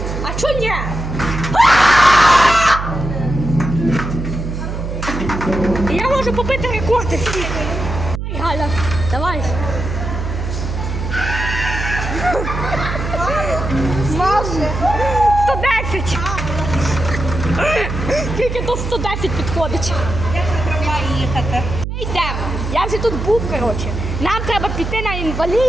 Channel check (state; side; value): noise; right; hum, 5 dB below the sound